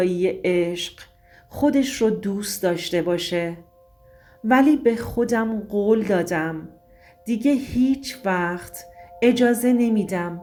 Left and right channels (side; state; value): both; identical; correlation 1.00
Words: عشق خودش رو دوست داشته باشه. ولی به خودم قول دادم دیگه هیچ وقت اجازه نمیدم